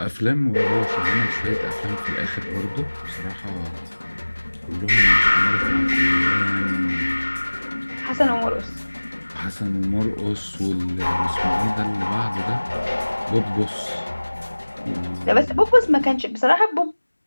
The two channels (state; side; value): inverted; both; correlation -1.00